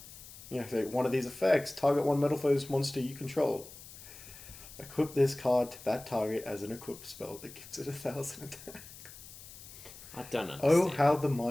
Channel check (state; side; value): noise; left; hiss, 16 dB below the sound